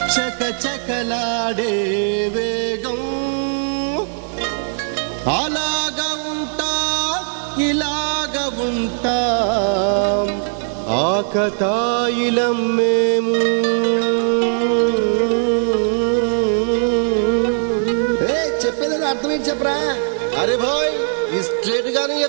చకచకలాడే వేగం అలాగా ఉంటా ఇలాగ ఉంటా ఆకతాయిలం మేము చెప్పేది అర్థమేంటి చెప్పరా అరే భాయ్ స్ట్రేట్ గానే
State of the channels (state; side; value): silent; left; 57 dB below the other